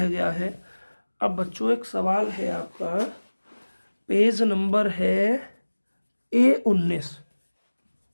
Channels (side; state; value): both; inverted; correlation -1.00